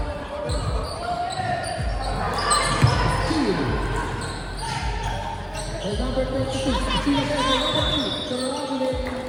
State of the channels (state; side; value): identical; both; correlation 1.00